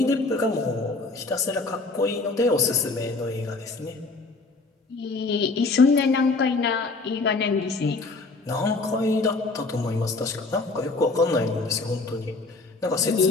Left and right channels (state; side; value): quieter; right; 3.6 dB